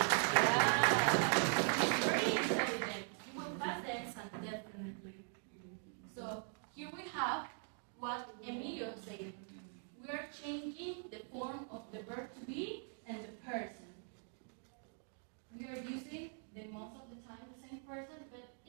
Yeah. He's very intelligent. He will pass the exam, definitely. So here we have what Emilio said. We are changing the form of the verb to be and the person. We are using the most of the time the same person, but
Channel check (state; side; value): silent; left; 50 dB below the other